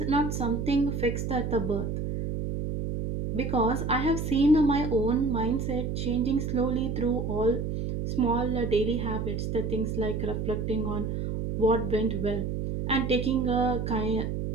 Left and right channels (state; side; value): noise; right; hum, 3 dB below the sound